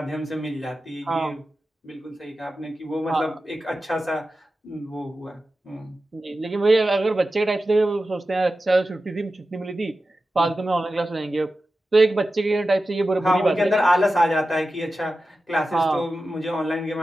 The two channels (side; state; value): both; normal; correlation 0.93